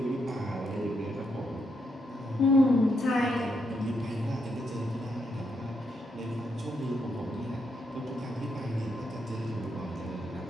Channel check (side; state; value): both; normal; correlation 0.78